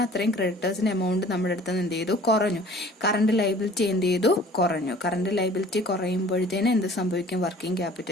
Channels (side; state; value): both; normal; correlation 0.50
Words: അത്രയും ക്രെഡിറ്റേഴ്സിന്റെ എമൗണ്ട് നമ്മുടെ അടുത്ത് എന്ത് ചെയ്തു, കുറഞ്ഞു. കറന്റ് ലൈബിലിറ്റി എന്ത് ചെയ്തു, കുറഞ്ഞു. കറന്റ് ലൈബിലിറ്റി കുറയുമ്പോഴത്തേന് എന്ത് സംഭവിക്കും, വർക്കിംഗ്